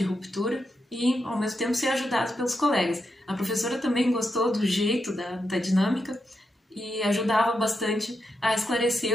ruptura e, ao mesmo tempo, ser ajudado pelos colegas. A professora também gostou do jeito, da dinâmica e ajudava bastante a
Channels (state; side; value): normal; both; correlation 0.85